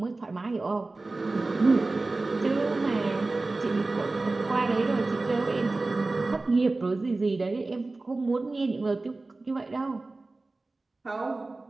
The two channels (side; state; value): left; quieter; 3.3 dB